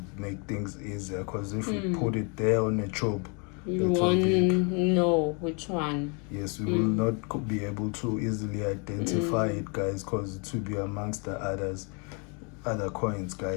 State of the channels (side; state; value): right; quieter; 34.8 dB